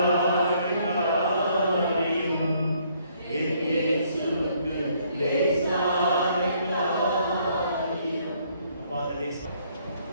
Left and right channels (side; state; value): both; inverted; correlation -0.66